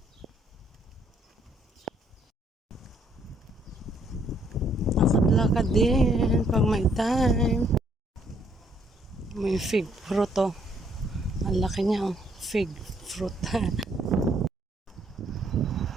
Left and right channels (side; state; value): both; normal; correlation 0.67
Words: Lakad-lakad din pag may time. May fig fruit oh. Ang laki niya oh. Fig fruit.